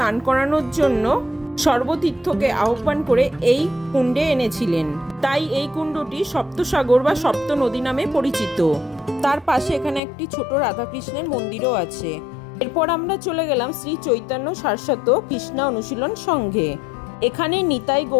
করানোর জন্য সর্বতীর্থকে আহ্বান করে এই কুণ্ডে এনেছিলেন, তাই এই কুণ্ডটি সপ্তসাগর বা সপ্ত নদী নামে পরিচিত। তার পাশে এখানে একটি ছোট রাধাকৃষ্ণের মন্দিরও আছে। এরপর আমরা চলে গেলাম শ্রী চৈতন্য সারস্বত কৃষ্ণা অনুশীলন সংঘে। এখানে নিতাই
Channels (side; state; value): right; drops out; at 10.0 s